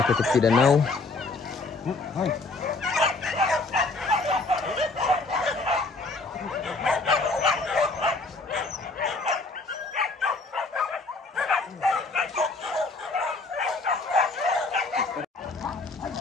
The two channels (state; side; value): quieter; right; 3.5 dB